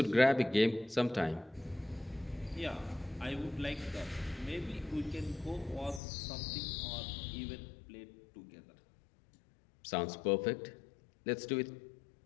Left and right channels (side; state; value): right; drops out; at 6.0 s